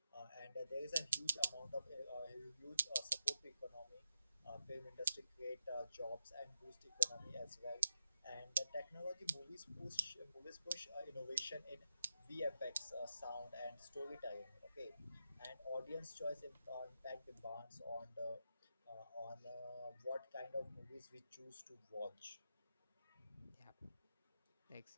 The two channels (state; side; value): inverted; both; correlation -0.86